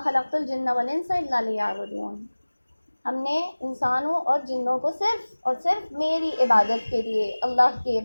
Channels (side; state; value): both; inverted; correlation -1.00